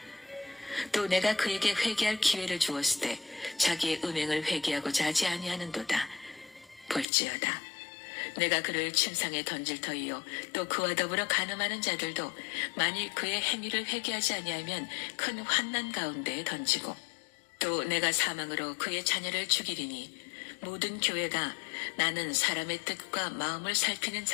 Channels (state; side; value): drops out; right; at 7.1 s